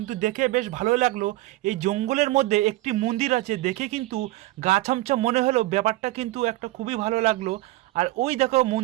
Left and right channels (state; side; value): quieter; left; 18.2 dB